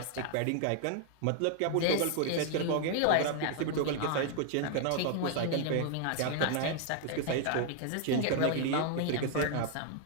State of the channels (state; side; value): different; both; correlation 0.00